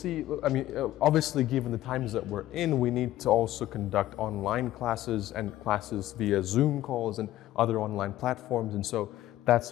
see, obviously given the times that we're in, we need to also conduct online classes and classes via Zoom calls and other online platforms. And so that's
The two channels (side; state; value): right; quieter; 14.6 dB